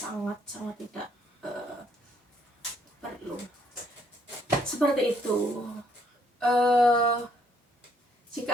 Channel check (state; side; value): normal; both; correlation 0.68